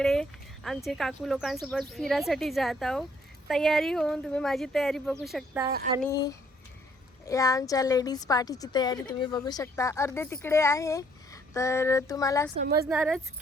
आमचे काकू लोकांसोबत फिरासाठी जात आहोत. तयारी होऊन तुम्ही माझी तयारी बघू शकता आणि या आमच्या लेडीज पार्टीची तयारी तुम्ही बघू शकता. अर्धे तिकडे आहे, तर तुम्हाला समजणारच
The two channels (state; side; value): normal; both; correlation 0.65